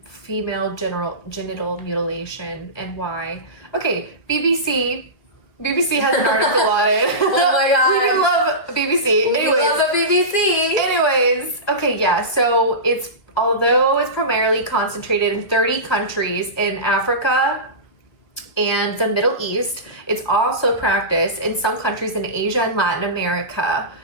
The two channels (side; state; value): right; late; 1.9 ms